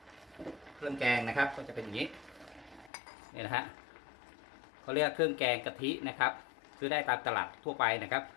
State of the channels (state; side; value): drops out; right; at 2.9 s